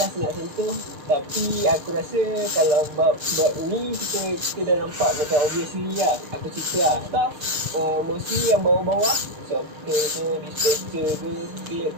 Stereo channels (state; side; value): late; left; 6.5 ms